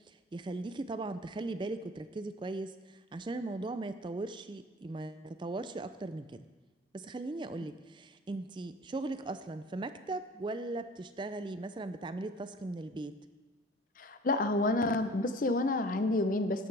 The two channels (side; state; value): both; normal; correlation 0.46